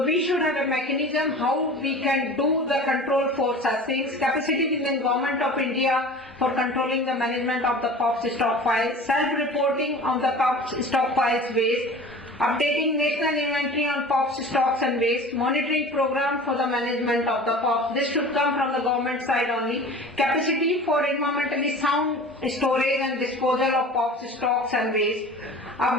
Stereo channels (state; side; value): normal; both; correlation 0.39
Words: we should have a mechanism how we can do the control for such things. Capacity within Government of India for controlling the management of the POPs stockpiles, self-reporting on the POPs stockpiles waste, updating national inventory on POPs stocks and waste, monitoring program for the management of the POPs. This should come from the government side only. Capacity for environmentally sound storage and disposal of POPs stocks and waste.